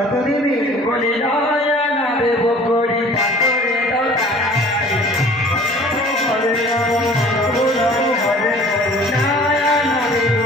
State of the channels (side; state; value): both; normal; correlation 0.48